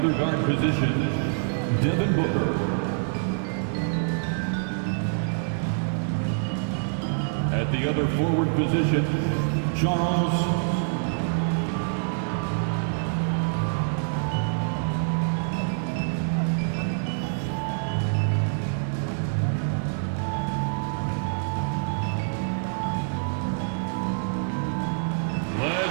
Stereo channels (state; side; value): silent; left; digital silence